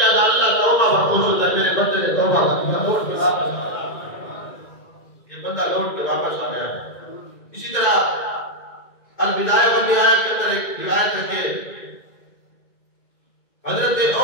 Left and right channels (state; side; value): late; right; 2.1 ms